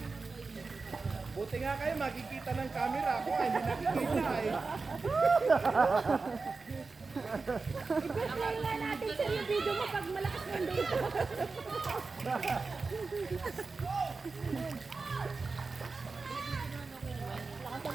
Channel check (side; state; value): left; quieter; 4.1 dB